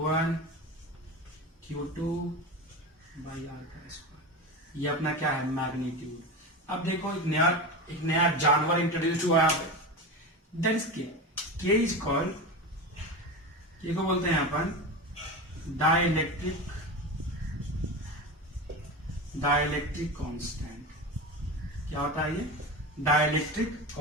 Q2 बाई R का स्क्वायर, ये अपना क्या है मैग्नीट्यूड। अब देखो एक नया जानवर इंट्रोड्यूस हुआ यहाँ पे, दैट इज के इज कॉल्ड, के को बोलते हैं अपन डाइलेक्ट्रिक कांस्टेंट। क्या होता है ये? डाइलेक्ट्रिक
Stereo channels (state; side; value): normal; both; correlation 0.24